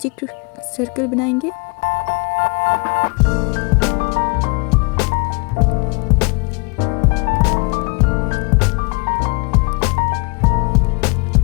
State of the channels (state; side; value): quieter; right; 31.5 dB